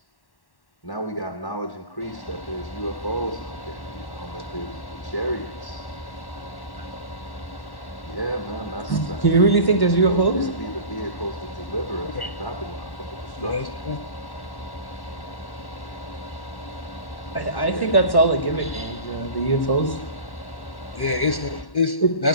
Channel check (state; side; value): late; right; 1.1 ms